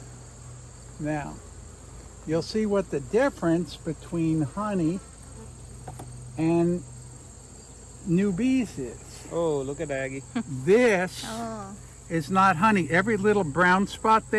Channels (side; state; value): both; identical; correlation 1.00